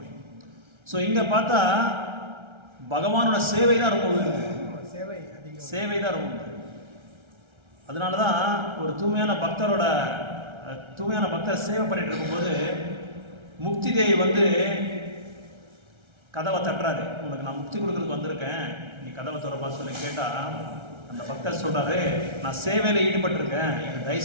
ஸோ இங்கே பார்த்தா பகவானோட சேவை தான் ரொம்ப உயர்வு, சேவை தான் ரொம்ப உயர்வு. அதனால தான் ஒரு தூய்மையான பக்தர் சேவை பண்ணிட்டு இருக்கும்போது முக்தி தேவி வந்து கதவை தட்டுறாரு. உனக்கு நான் முக்தி கொடுக்கறதுக்கு வந்திருக்கேன், நீ கதவை திறப்பா சொல்லி கேட்டால் அந்த பக்தர் சொல்கிறாரு, நான் சேவையில் ஈடுபட்டிருக்கேன், எனக்கு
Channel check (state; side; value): late; left; 1.3 ms